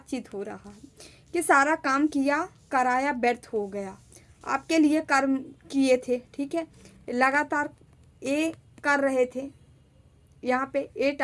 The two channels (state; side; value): identical; both; correlation 1.00